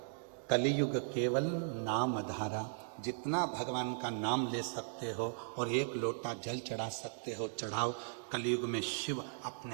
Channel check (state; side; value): silent; left; 53 dB below the other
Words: कलयुग केवल नाम धारा, जितना भगवान का नाम ले सकते हो और 1 लोटा जल चढ़ा सकते हो चढ़ाओ। कलयुग में शिव